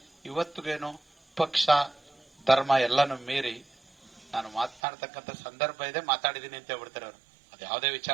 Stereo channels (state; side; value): drops out; left; at 4.8 s